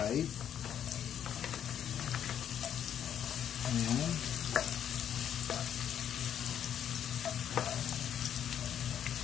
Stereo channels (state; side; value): quieter; right; 9.4 dB